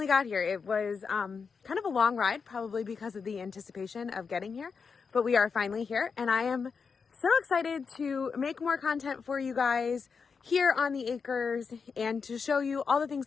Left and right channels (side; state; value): right; quieter; 5.5 dB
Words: got here. It was kind of a long ride, probably because of the anticipation of getting here. But we are finally here. And I am so excited to make more content for you guys here on the acres and to show you all the things